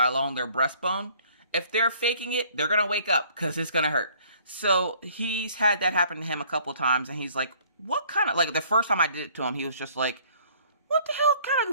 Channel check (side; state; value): both; inverted; correlation -0.57